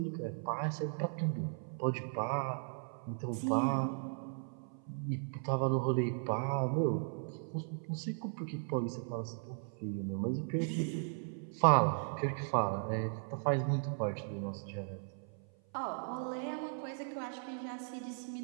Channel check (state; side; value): silent; left; 53 dB below the other